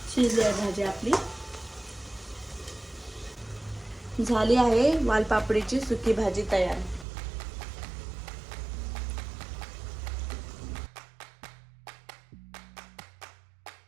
शिजली आहे भाजी आपली। झाली आहे वालपापडीची सुकी भाजी तयार.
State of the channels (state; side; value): drops out; left; at 7.1 s